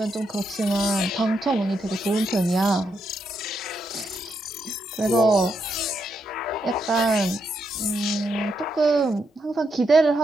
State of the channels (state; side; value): normal; both; correlation 0.80